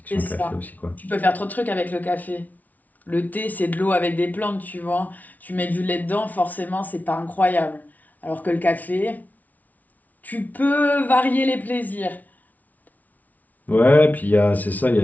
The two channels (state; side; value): late; right; 0.076 ms